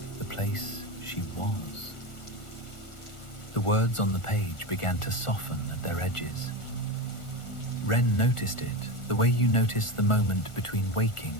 the place she was. The words on the page began to soften at their edges. Wren noticed it the way you notice the moment between waking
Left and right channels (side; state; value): right; late; 1.4 ms